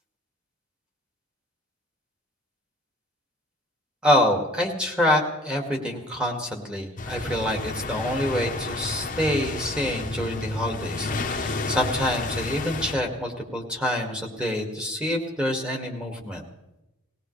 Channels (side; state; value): both; normal; correlation 0.52